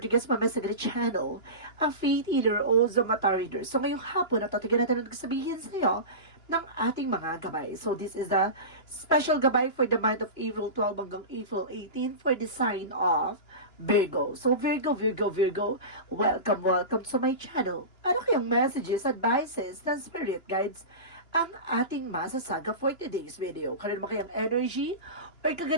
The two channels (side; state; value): right; late; 2.9 ms